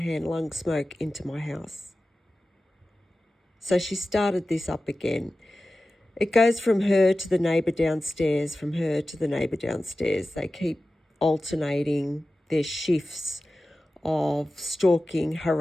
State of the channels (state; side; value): normal; both; correlation 0.95